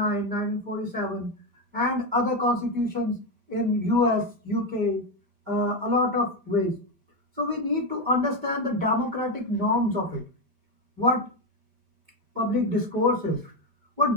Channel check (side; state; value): left; late; 5.1 ms